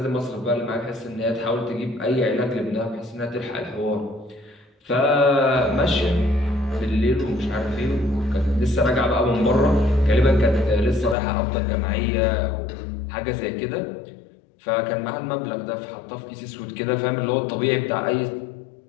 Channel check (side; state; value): right; drops out; at 11.2 s